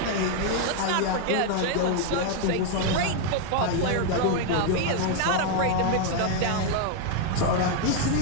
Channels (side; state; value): both; different; correlation 0.01